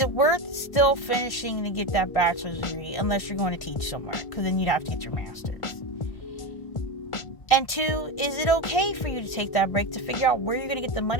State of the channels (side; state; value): right; late; 1.5 ms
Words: it worth still finishing to get that bachelor's degree unless you're going to teach somewhere? Because then you'd have to get your master's. And two, is it okay for you to take that break to figure out where you're going to get the